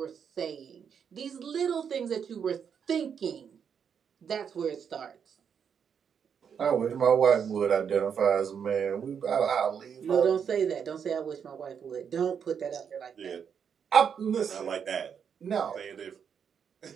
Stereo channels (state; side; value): quieter; left; 7.3 dB